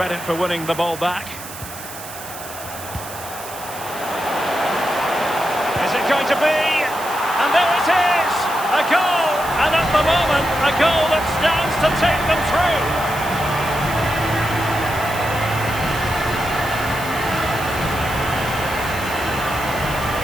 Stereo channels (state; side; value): noise; right; hiss, 13 dB below the sound